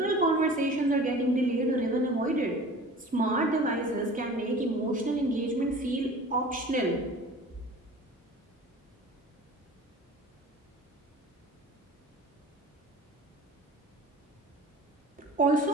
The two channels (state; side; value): normal; both; correlation 0.41